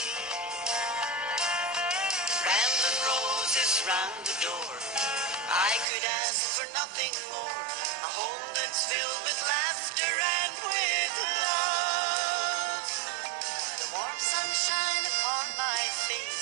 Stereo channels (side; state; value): left; drops out; at 5.9 s